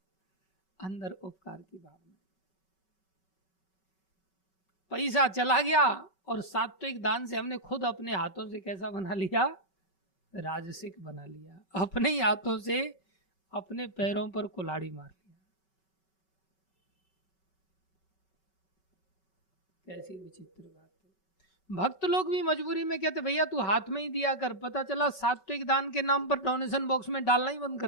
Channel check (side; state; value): right; late; 5.3 ms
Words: अंदर उपकार की भावना। पैसा चला गया और सात्विक दान से हमने खुद अपने हाथों से कैसा बना लिया, राजसिक बना लिया। अपने ही हाथों से अपने पैरों पर कुल्हाड़ी मार लिया। कैसी विचित्र बात है। भक्त लोग भी मजबूरी में कहते भैया तू हाथ में ही दिया कर, पता चला सात्विक दान के नाम पर डोनेशन बॉक्स में डालना ही बंद